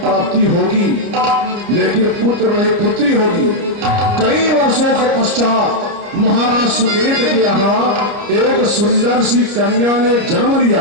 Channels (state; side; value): late; left; 29 ms